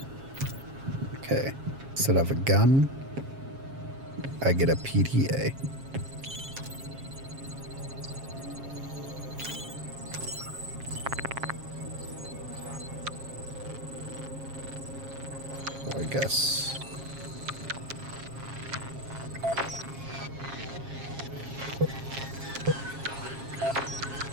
Okay, instead of a gun, I get a PTA. I guess.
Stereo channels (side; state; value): left; late; 7.4 ms